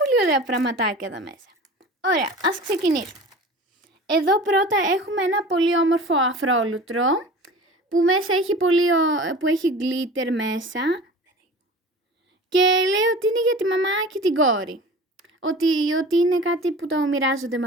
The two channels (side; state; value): both; normal; correlation 0.39